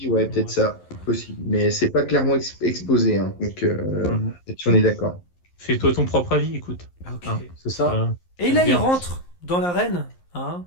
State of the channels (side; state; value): right; late; 11 ms